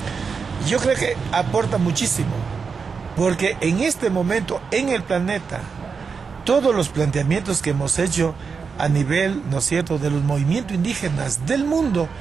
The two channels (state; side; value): quieter; left; 5.4 dB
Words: Yo creo que aporta muchísimo, porque en este momento en el planeta todos los planteamientos que hemos hecho a nivel, ¿no es cierto?, de los movimientos indígenas del mundo